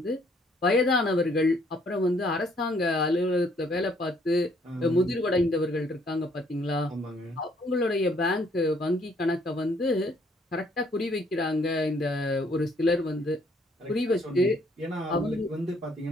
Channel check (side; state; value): both; normal; correlation 0.65